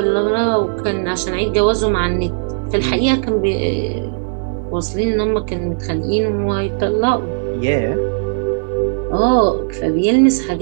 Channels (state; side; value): silent; left; 62 dB below the other